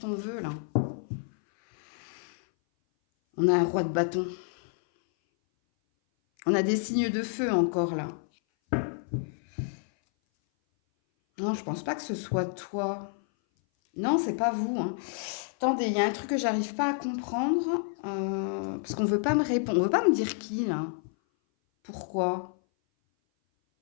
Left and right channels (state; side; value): silent; right; 57 dB below the other